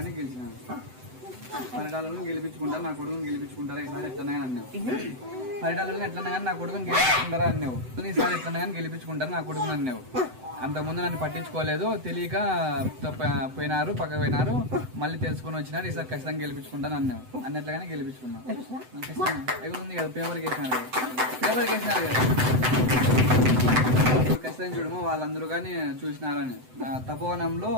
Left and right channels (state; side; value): late; left; 7.9 ms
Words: గెలిచినాను. పరిటాలను గెలిపించుకుంటారు, నా కొడుకుని గెలిపించుకుంటారా ఈసారి ఎట్లన్నా కానీ అన్నావు. పరిటాలను ఎట్లన్నా కానీ నా కొడుకుని గెలిపించుకుంటారా అన్నావు. ఈసారి ఎట్లన్నా కానీ గెలిపించుకుంటారు నా కొడుకుని అన్నావు. అంతకుముందు నన్ను పట్టించుకోలేదు, తెలియక పోయినారు, పక్కకు పోయినారు, మళ్ళీ తెలుసుకొని వచ్చినారు. ఈసారి ఖచ్చితంగా గెలిపించుకుంటాను అన్నావు. అన్నట్లుగానే గెలిపించుకున్నావు. ఖచ్చితంగా ఉంది కదా, పేపర్కి వేసినారు కదా, పేపర్కి వేసినారు కదా. ఖచ్చితంగా చూడమో వాళ్ళందరూ కానీ చూసినారని. తపోవనంలో